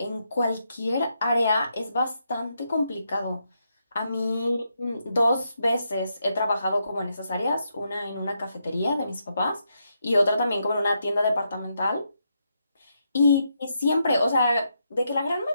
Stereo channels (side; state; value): both; inverted; correlation -0.81